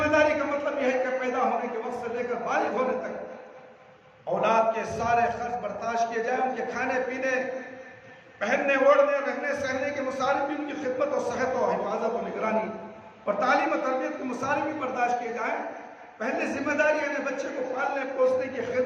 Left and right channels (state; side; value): identical; both; correlation 1.00